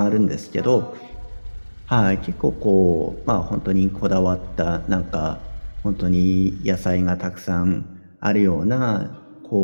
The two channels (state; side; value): inverted; both; correlation -1.00